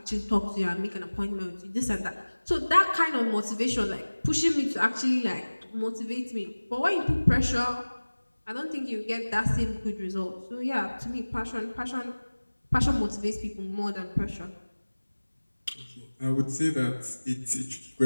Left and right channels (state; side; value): inverted; both; correlation -1.00